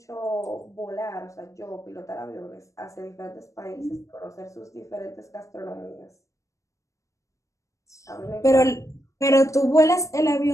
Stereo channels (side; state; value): right; late; 0.15 ms